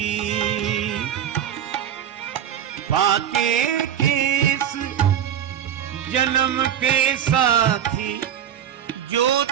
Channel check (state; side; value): quieter; left; 9.7 dB